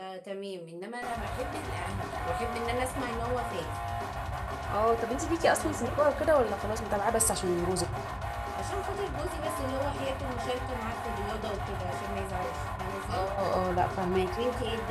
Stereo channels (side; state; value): both; identical; correlation 1.00